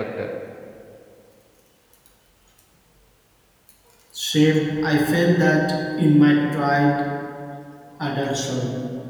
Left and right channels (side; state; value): both; identical; correlation 1.00